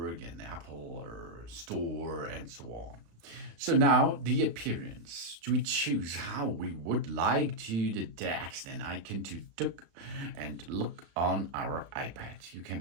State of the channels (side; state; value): left; late; 35 ms